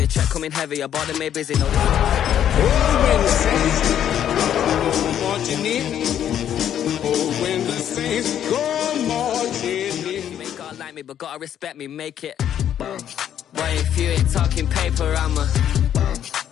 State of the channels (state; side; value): quieter; right; 10.1 dB